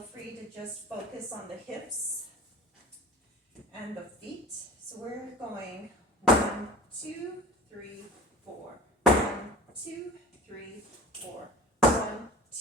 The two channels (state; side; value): normal; both; correlation 0.39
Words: free to just focus on the hips and the feet. So we're going 1, 2, 3, 4. 1, 2, 3, 4. 1,